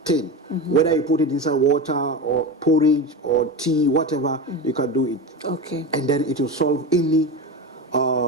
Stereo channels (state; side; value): normal; both; correlation 0.23